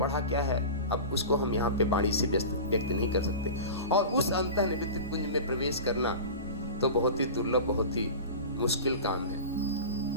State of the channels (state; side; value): inverted; both; correlation -0.32